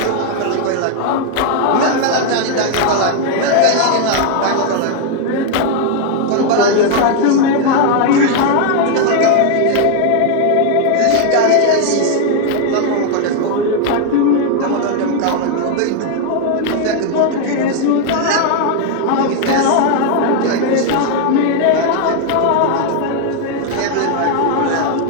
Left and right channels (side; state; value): both; different; correlation 0.00